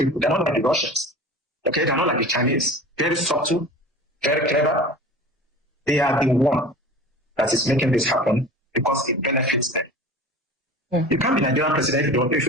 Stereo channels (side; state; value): both; normal; correlation 0.38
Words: They're not like the Russians. Okay, they're not like the Chinese. Very subtle, very clever. They are the one that is making this happen because it benefits them. Yeah. You can't be Nigerian president if you